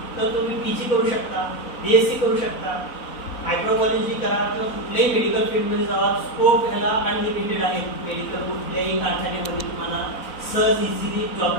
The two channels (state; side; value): late; right; 4.0 ms